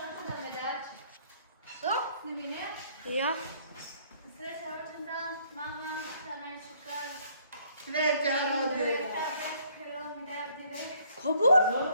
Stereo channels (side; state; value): both; inverted; correlation -0.63